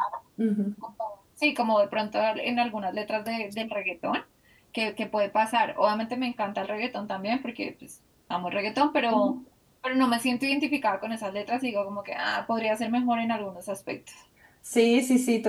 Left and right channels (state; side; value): identical; both; correlation 1.00